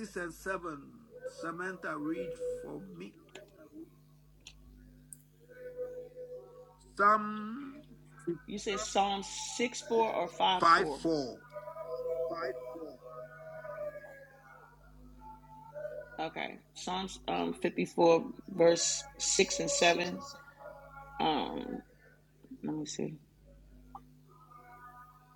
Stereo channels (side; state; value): both; identical; correlation 1.00